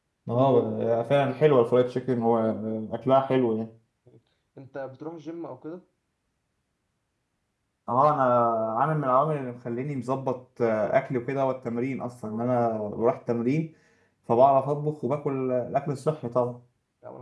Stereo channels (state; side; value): identical; both; correlation 1.00